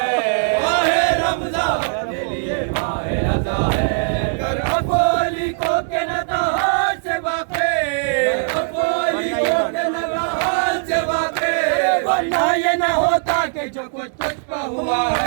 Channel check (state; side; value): silent; left; digital silence